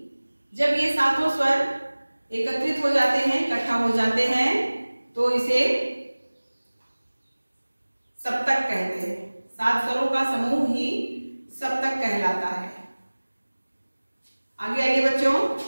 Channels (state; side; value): inverted; both; correlation -1.00